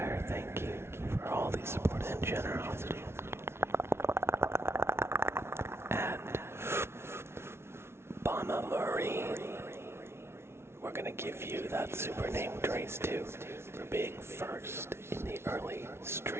thank you for all the support and generosity. And Bama Marine, we're gonna give you that super name trace too for being first in the early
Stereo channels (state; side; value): late; left; 0.12 ms